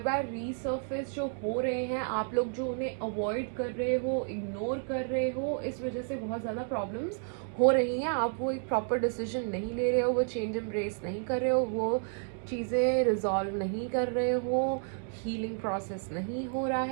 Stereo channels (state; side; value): silent; left; 57 dB below the other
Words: रीसर्फेस जो हो रहे हैं, आप लोग जो उन्हें अवॉइड कर रहे हो, इग्नोर कर रहे हो, इस वजह से बहुत ज़्यादा प्रॉब्लम्स हो रही हैं। आप वो एक प्रॉपर डिसीजन नहीं ले रहे हो, वो चेंज एम्ब्रेस नहीं कर रहे हो, वो चीज़ें रिजॉल्व नहीं कर रहे हो, हीलिंग प्रोसेस नहीं हो रहा